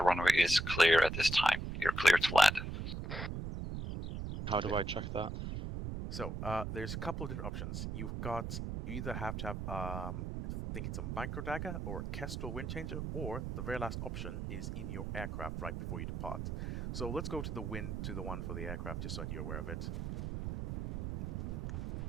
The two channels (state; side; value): noise; right; rumble, 4 dB below the sound